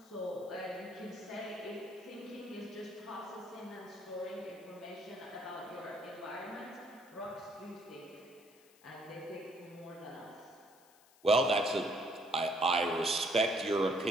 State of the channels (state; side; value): noise; left; hiss, 27 dB below the sound